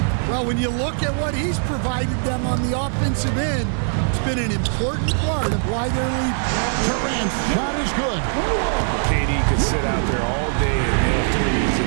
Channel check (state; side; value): silent; left; 65 dB below the other